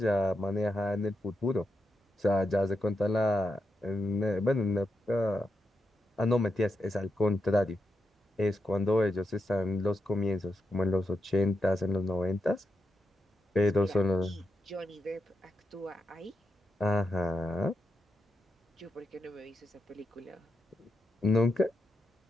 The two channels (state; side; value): normal; both; correlation 0.85